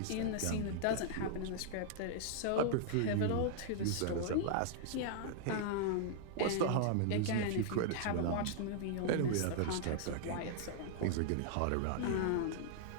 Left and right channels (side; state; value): both; different; correlation -0.01